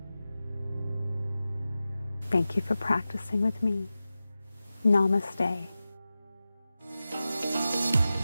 Thank you for practicing with me. Namaste.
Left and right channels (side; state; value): both; inverted; correlation -0.94